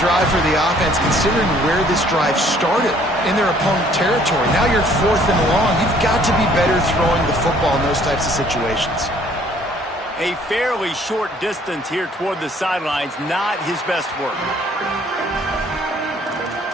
for the offense, considering where this drive started, in their opponent territory. Now you're 4th and long. You've got to be better throwing the football in those types of situations. A fairly short distance here toward the sidelines, not his best work.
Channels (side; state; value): both; normal; correlation 0.59